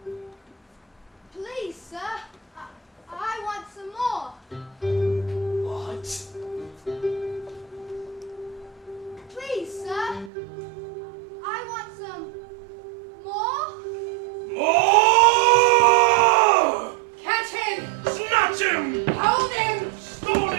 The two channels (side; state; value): left; drops out; at 10.3 s